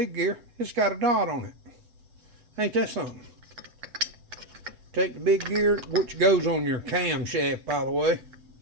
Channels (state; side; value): late; left; 7.9 ms